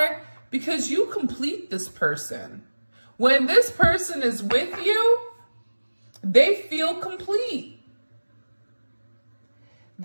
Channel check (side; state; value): both; inverted; correlation -1.00